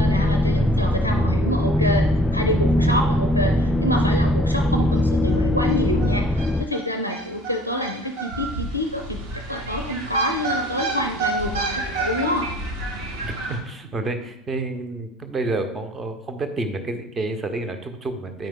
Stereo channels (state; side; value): normal; both; correlation 0.52